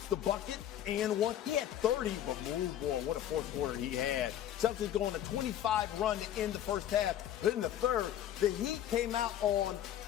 the bucket and 1. He had 30, but boy, what a fourth quarter he had. Celtics go on a 25 run to end the first half. But in the third, the Heat came out on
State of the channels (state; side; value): quieter; right; 11.2 dB